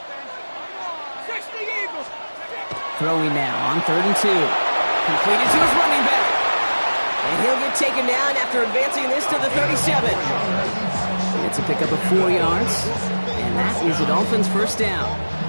60 Eagles. throwing now on 3rd and 2. Completed to his running back. And he'll get taken down after advancing this to the 37. It's a pickup of 4 yards. And that is a Dolphins first down.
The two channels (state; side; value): inverted; both; correlation -1.00